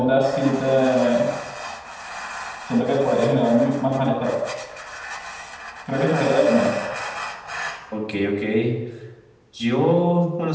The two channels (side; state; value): both; identical; correlation 1.00